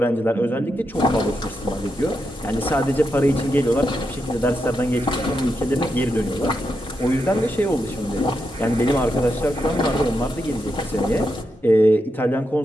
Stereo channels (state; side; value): normal; both; correlation 0.85